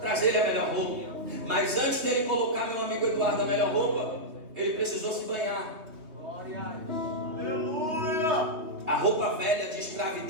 trazer a melhor roupa. Mas antes dele colocar meu amigo Eduardo a melhor roupa, ele precisou se banhar. Glória a Deus. Aleluia. A roupa velha de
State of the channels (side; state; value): left; late; 3.4 ms